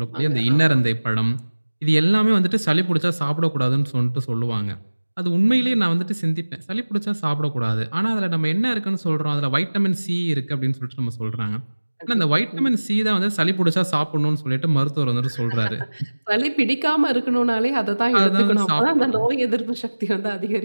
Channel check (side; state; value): both; inverted; correlation -1.00